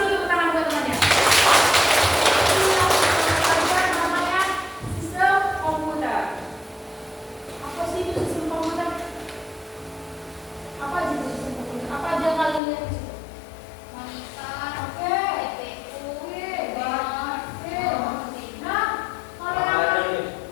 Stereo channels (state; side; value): drops out; right; at 12.6 s